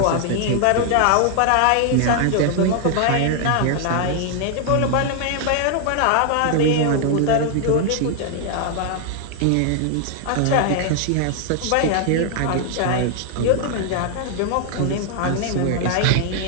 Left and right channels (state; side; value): different; both; correlation 0.00